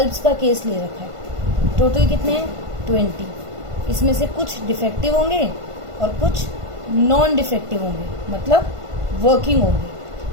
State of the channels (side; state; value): left; late; 1.5 ms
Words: का केस ले रखा है। टोटल कितने हैं, 20। इसमें से कुछ डिफेक्टिव होंगे और कुछ नॉन डिफेक्टिव होंगे, मतलब वर्किंग होंगे।